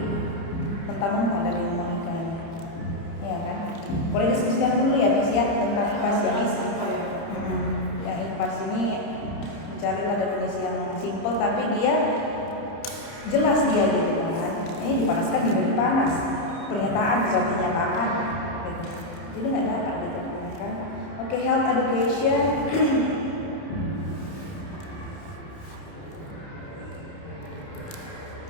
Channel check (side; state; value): right; late; 30 ms